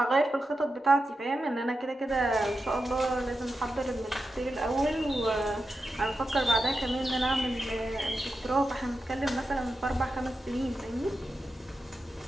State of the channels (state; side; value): normal; both; correlation 0.89